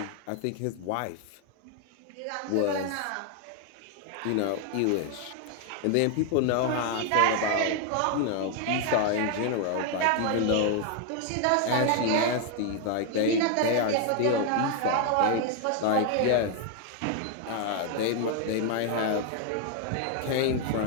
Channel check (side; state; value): both; different; correlation 0.00